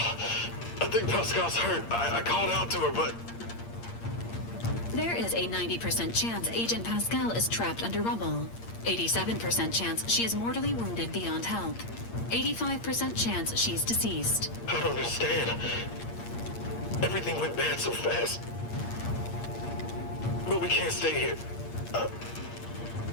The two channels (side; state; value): right; late; 8.6 ms